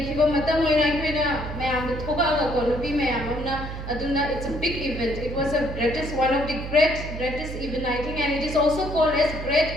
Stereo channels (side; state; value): right; noise; hum, 8 dB below the sound